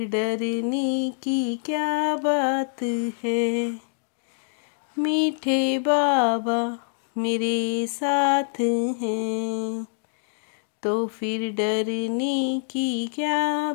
डरने की क्या बात है। मीठे बाबा मेरे साथ हैं, तो फिर डरने की क्या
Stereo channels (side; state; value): right; silent; digital silence